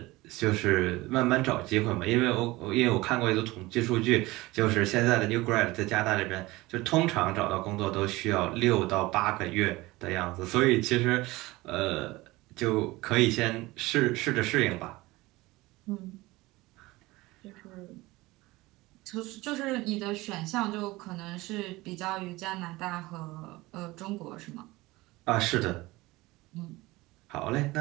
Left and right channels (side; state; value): left; quieter; 20.4 dB